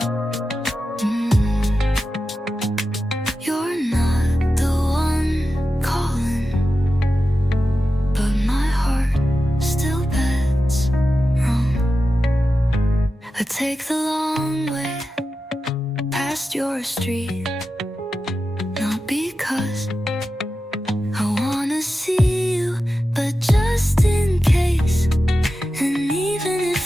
You're not the one calling, but my heart still bets wrong. I take the long way past your street, not because I wanna see you, but just in case. And even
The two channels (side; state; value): both; normal; correlation 0.92